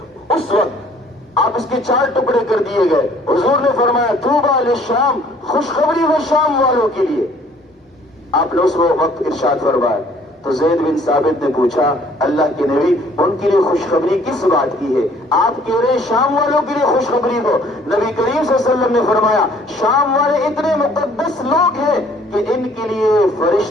اس وقت آپ اس کے 4 ٹکڑے کر دیے گئے۔ حضور نے فرمایا طوبی للشام، خوشخبری ہو شام والوں کے لیے۔ آپ نے اس وقت ارشاد فرمایا۔ تو زید بن ثابت نے پوچھا اللہ کے نبی ان کے لیے خوشخبری کس بات کی ہے؟ آپ کہہ رہے ہیں شام والوں کے لیے خوشخبری ہو۔ نبی کریم صلی اللہ علیہ وسلم نے فرمایا شام والے اتنے مقدس لوگ ہیں کہ ان کے لیے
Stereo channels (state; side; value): normal; both; correlation 0.58